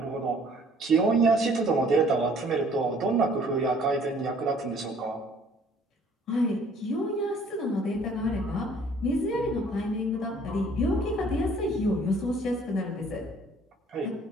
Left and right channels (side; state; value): both; normal; correlation 0.57